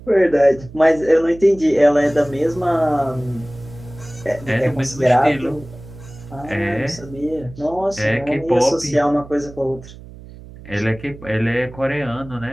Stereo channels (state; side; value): noise; right; hum, 17 dB below the sound